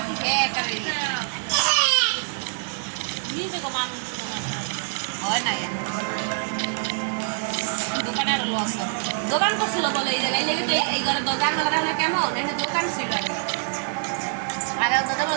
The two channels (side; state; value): left; silent; digital silence